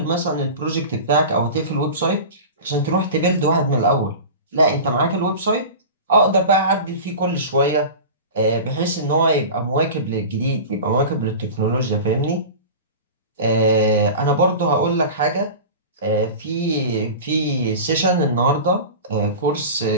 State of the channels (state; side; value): inverted; both; correlation -0.32